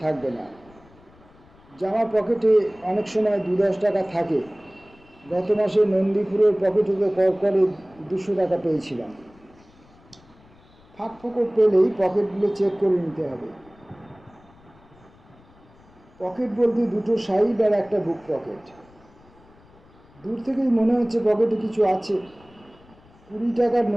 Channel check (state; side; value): noise; left; rumble, 27 dB below the sound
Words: থাকবে না। জামা পকেটে অনেক সময় 2-10 টাকা থাকে। গত মাসে নন্দীপুরের পকেটে তো করে 200 টাকা পেয়েছিলাম। ফাঁক ফোকর পেলেই পকেটগুলো চেক করে নিতে হবে। পকেট বলতে দুটো সাইড আর একটা বুক পকেট। দূর থেকেই মনে হচ্ছে পকেটে কিছু আছে। 20 টাকার